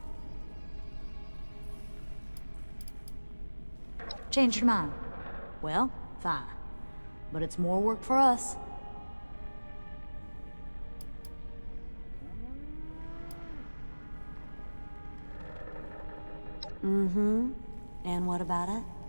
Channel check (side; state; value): both; inverted; correlation -1.00